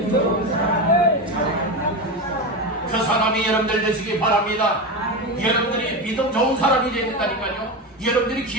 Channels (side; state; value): both; normal; correlation 0.19